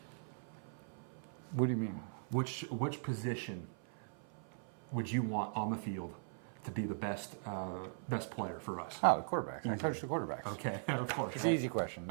What do you mean? Which position would you want on the field to be the best player for us? Oh, the quarterback. I coach the quarterbacks. Okay, of course. It's right? an easy question.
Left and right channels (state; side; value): silent; left; 51 dB below the other